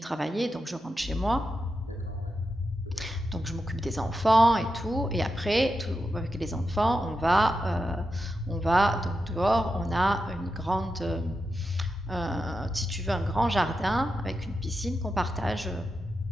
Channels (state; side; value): normal; both; correlation 0.88